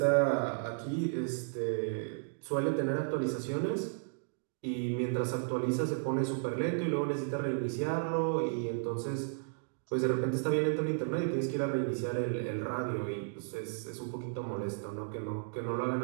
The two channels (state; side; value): silent; left; digital silence